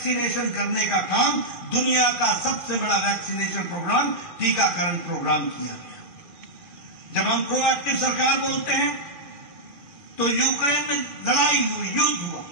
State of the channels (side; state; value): left; late; 2.4 ms